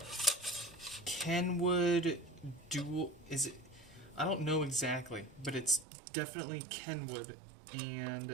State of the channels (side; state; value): left; drops out; at 5.9 s